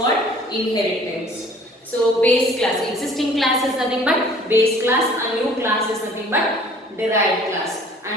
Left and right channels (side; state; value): both; normal; correlation 0.52